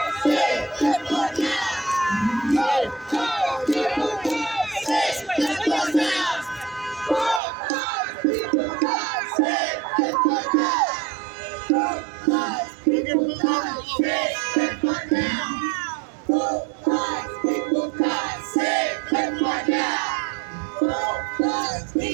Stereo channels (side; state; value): left; drops out; at 7.4 s